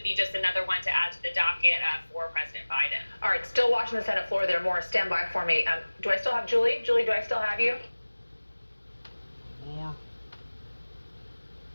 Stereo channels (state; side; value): inverted; both; correlation -1.00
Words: be just another one to add to the docket for President Biden. All right, still watching the Senate floor there. More, stand by for me. Do I still have Julie? Julie, do I still have you? More.